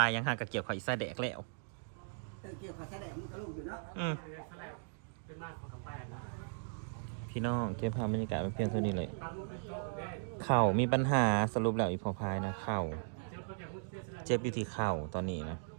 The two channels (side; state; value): left; silent; digital silence